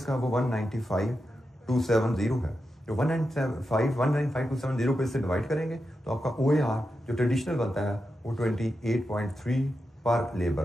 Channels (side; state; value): both; normal; correlation 0.89